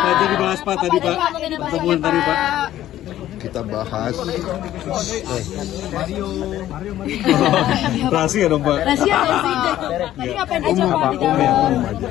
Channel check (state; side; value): quieter; right; 13.0 dB